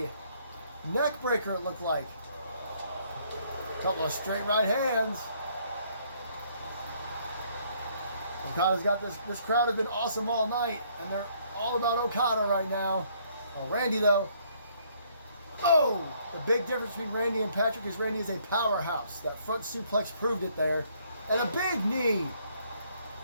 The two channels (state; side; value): inverted; both; correlation -0.66